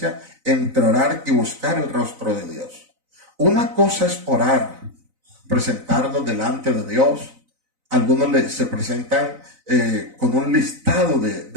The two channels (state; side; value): late; left; 4.0 ms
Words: entre orar y buscar el rostro de Dios. Una cosa es orar, presentarnos delante de Dios. Algunos se presentan con un listado